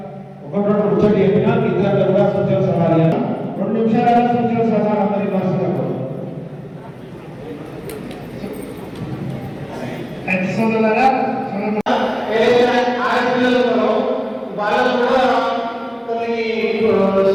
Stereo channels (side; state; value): both; identical; correlation 1.00